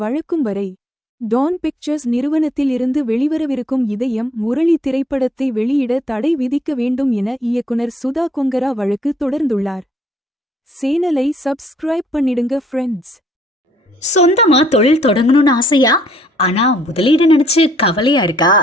வழக்கும் வரை டான் பிக்சர்ஸ் நிறுவனத்தில் இருந்து வெளிவரவிருக்கும் இதயம் முரளி திரைப்படத்தை வெளியிட தடை விதிக்க வேண்டும் என இயக்குனர் சுதா கொங்கரா வழக்கு தொடர்ந்துள்ளார். சேனலை சப்ஸ்கிரைப் பண்ணிடுங்க ஃப்ரெண்ட்ஸ். சொந்தமா தொழில் தொடங்கணும்னு ஆசையா? ஆனா முதலீடு நினைச்சு கவலையா இருக்கா?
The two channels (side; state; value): both; normal; correlation 0.65